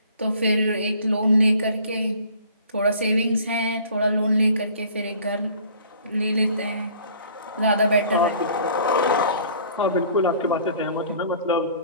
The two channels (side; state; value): both; inverted; correlation -0.51